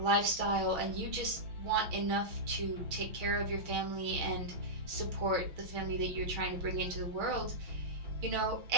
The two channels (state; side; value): late; left; 6.3 ms